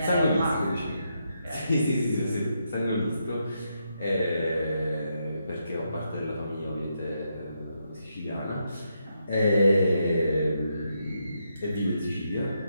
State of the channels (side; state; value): both; inverted; correlation -0.81